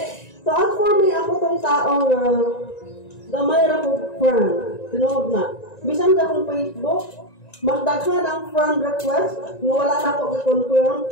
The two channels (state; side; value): late; right; 1.9 ms